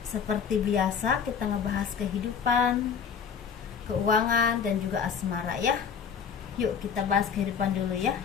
Seperti biasa kita ngebahas kehidupan, keuangan dan juga asmara ya. Yuk kita bahas kehidupan dulu ya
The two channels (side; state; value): right; quieter; 6.8 dB